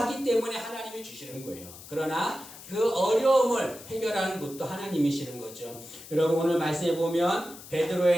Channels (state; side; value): noise; left; hiss, 16 dB below the sound